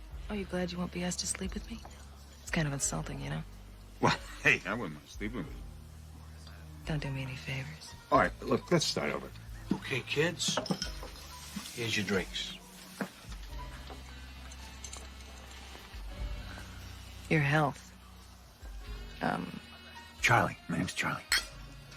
Oh, you glad you won't be asked to sleep with me? It's kind of insulting, you know? Well, hey, I wouldn't mind sleeping with you. Don't do me any favors. All right, look, let's start over. Okay, kids. Here's your drinks. Your health. Charlie. My name's Charlie.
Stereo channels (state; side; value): identical; both; correlation 1.00